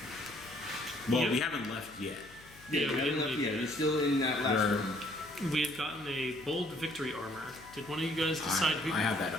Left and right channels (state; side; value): noise; left; hum, 23 dB below the sound